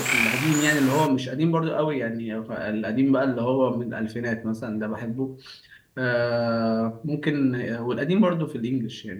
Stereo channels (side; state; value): both; identical; correlation 1.00